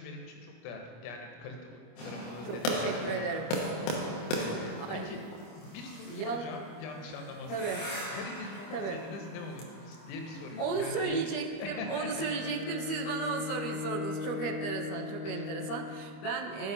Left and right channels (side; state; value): right; late; 25 ms